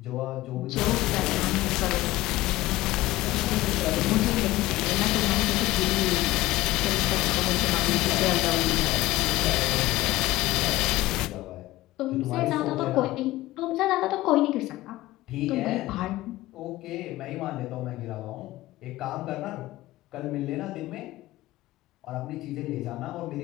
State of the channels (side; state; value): right; quieter; 17.5 dB